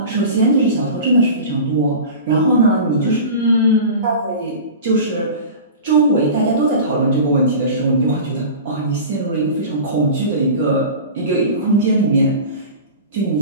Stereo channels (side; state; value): both; inverted; correlation -0.34